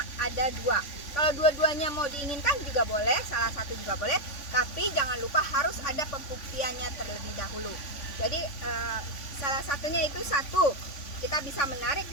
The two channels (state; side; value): late; right; 3.5 ms